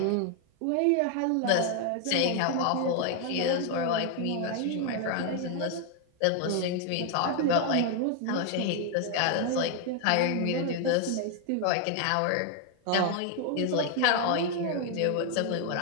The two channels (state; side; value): different; both; correlation 0.00